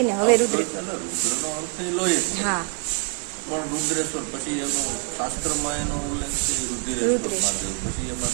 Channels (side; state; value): left; quieter; 39.7 dB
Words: હવે રુદ્રનો અર્થ લોહી. હા પણ રુદ્રેશ્વર પછી એનો શાસ્ત્રમાં એનો ઉલ્લેખ છે રુધિરેશ્વર મહાદેવ. પછી એમાં